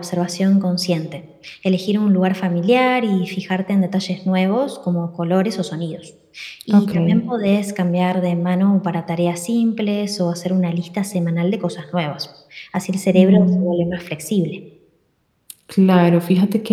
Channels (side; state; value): both; identical; correlation 1.00